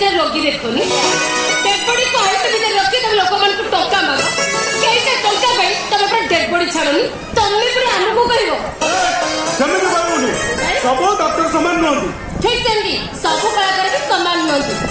रोगी देखोनी डेड बॉडी को आइस भीतर रखी तमे लोक मन को टोका मागो केइसे टोका भाई तमे पर डेड बॉडी छाड़ोनी तमे पर हमको कहिवो जमे के बाबूनी सब डॉक्टर समान नहंती ठीक सेंदी सब कलाकार के समान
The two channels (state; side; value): identical; both; correlation 1.00